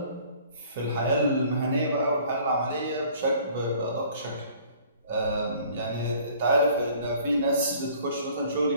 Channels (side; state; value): both; inverted; correlation -0.53